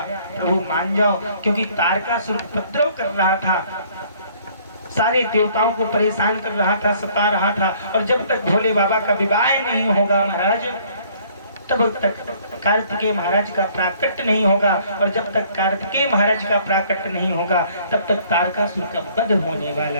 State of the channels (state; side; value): inverted; both; correlation -0.60